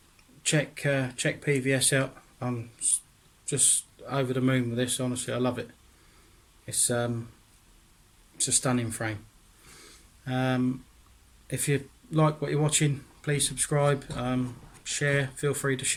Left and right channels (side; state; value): both; identical; correlation 1.00